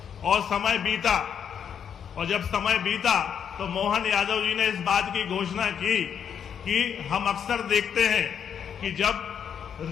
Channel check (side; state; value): right; quieter; 8.0 dB